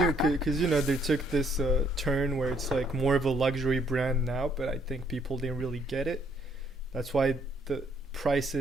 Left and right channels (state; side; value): normal; both; correlation 0.67